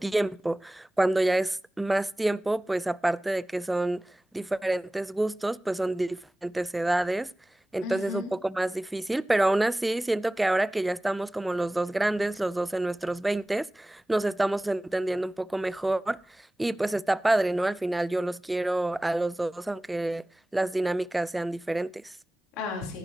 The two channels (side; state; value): both; normal; correlation 0.98